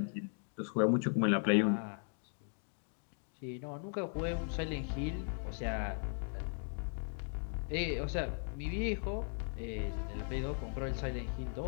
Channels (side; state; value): right; silent; 53 dB below the other